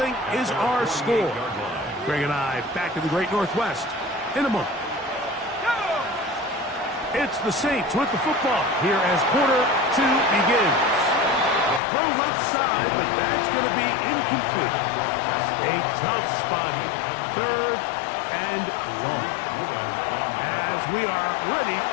is our score. Greg and I back in the Great Northwest in a moment. It's the Saints with the football here as quarter 2 begins. Throw left side, but that's going to be incomplete. A tough spot here. 3rd and long. As we are ready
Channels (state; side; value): drops out; right; at 11.8 s